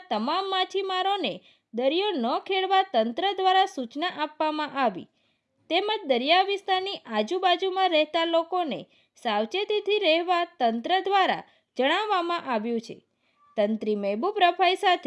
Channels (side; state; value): both; identical; correlation 1.00